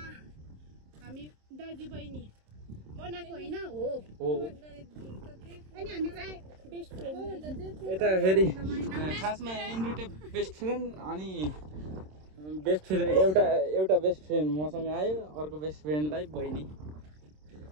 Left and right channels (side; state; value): left; late; 26 ms